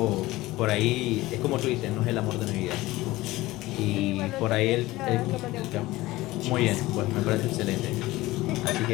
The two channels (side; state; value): right; quieter; 18.6 dB